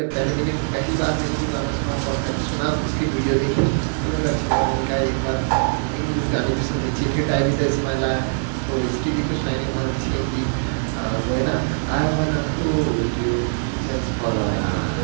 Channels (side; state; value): left; silent; digital silence